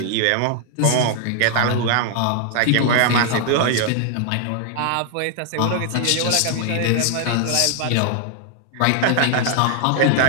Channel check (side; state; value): both; different; correlation 0.00